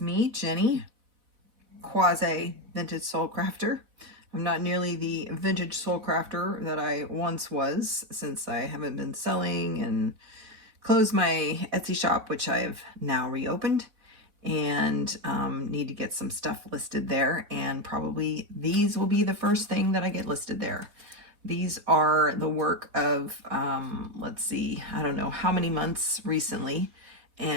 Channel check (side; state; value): left; late; 4.3 ms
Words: Jenny, quasi vintage soul crafter. I'm not nearly the vintage soul crafter that I once was, since I haven't been selling and closed my Etsy shop, which I have now reopened, and need to get some stuff listed there, and probably these will be the first thing that I get listed there. These are the work of, let's see, I don't know how many months recently,